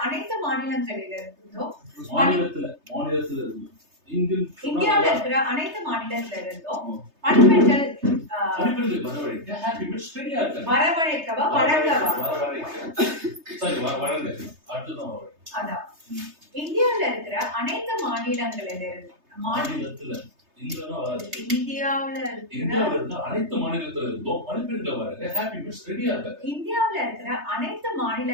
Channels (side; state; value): left; late; 3.3 ms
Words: அனைத்து மாநிலங்களிலிருந்தும் இந்தியாவில் இருக்கிற அனைத்து மாநிலத்திலிருந்தும் பணிப்பெண்கள் வரவழைக்க ஹாப்பி மீட்ஸ் ரெடியா இருக்காங்க. வரவழைக்கவா வழங்கவா? வழங்க. அடுத்ததான் அதான் இந்தியாவில் இருக்கிற அனைத்து மாநிலங்களிலிருந்து அனைத்து மாநிலத்துல இருந்தும் பணிப்பெண்களை வழங்க ஹாப்பி மீட்ஸ் ரெடியா இருக்காங்க. இந்தியாவில் இருக்கிற அனைத்து